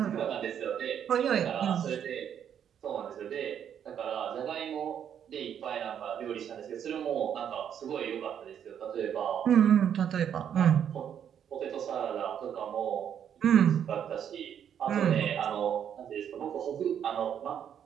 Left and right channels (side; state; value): left; quieter; 8.9 dB